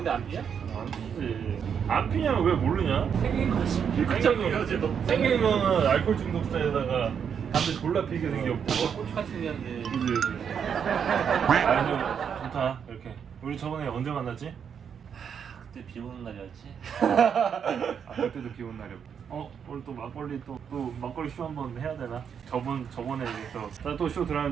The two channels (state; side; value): quieter; left; 7.4 dB